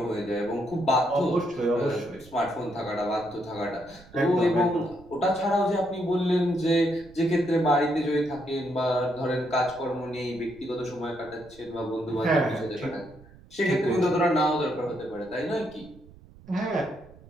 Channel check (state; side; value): noise; right; rumble, 23 dB below the sound